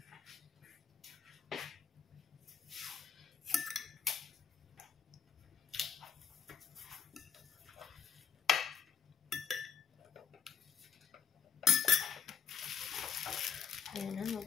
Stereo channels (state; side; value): quieter; right; 7.1 dB